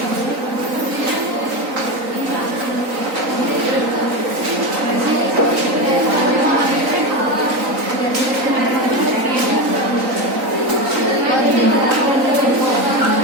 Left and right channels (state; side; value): late; left; 3.9 ms